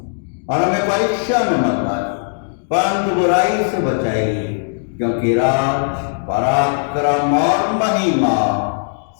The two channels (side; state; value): right; silent; digital silence